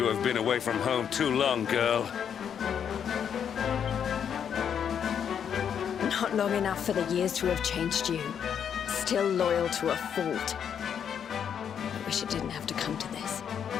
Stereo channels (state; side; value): quieter; right; 8.1 dB